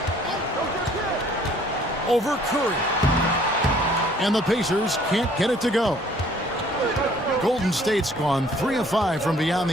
Over Curry. And the Pacers can't get it to go. Golden State's gone 3 of 5 from beyond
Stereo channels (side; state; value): both; normal; correlation 0.58